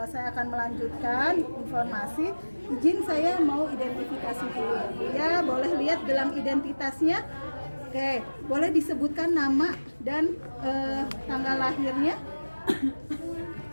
saya akan melanjutkan informasi, izin saya mau identifikasi dulu. Ya, boleh lihat gelang identitasnya. Oke, boleh disebutkan nama dan tanggal lahirnya?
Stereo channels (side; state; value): both; inverted; correlation -1.00